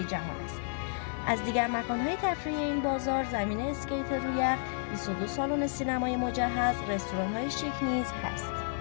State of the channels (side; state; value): right; silent; digital silence